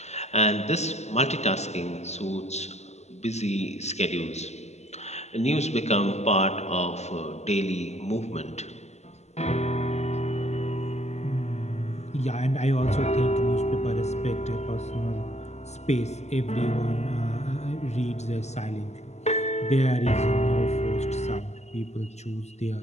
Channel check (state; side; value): late; right; 0.32 ms